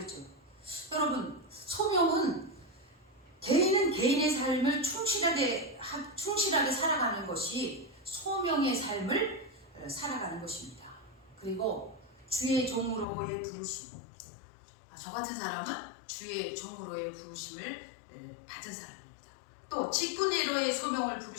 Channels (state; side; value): drops out; right; at 13.1 s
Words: 여러분, 소명은 개인은 개인의 삶을 충실하게 살아가는 것이 소명의 삶을 살아가는 것입니다. 그리고 주의 종으로의 부르심, 저 같은 사람은 주의 종으로의 부르심을 받은 사람입니다. 또 직분의로의 소명을